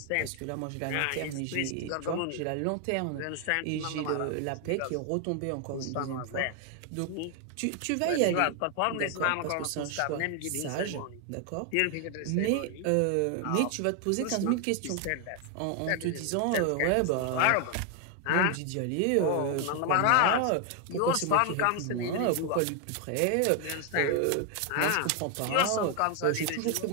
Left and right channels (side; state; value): both; different; correlation 0.00